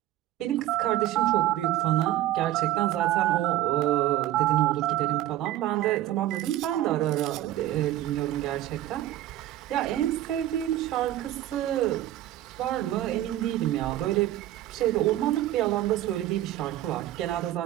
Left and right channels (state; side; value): quieter; left; 13.8 dB